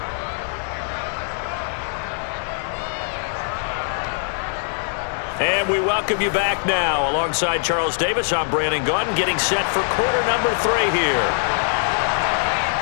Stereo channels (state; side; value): silent; right; digital silence